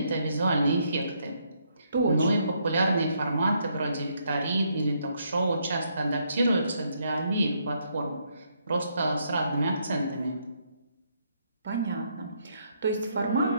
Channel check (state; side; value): inverted; both; correlation -0.73